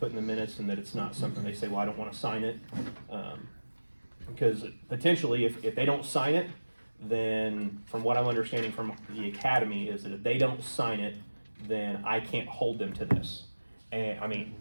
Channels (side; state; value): both; inverted; correlation -1.00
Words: in the minutes, and that it's not something they say, well, I don't wanna sign it. Because potentially, if they don't sign it, then from what I'm understanding from the academy is that if they don't sign it, then I can't hold them to this. And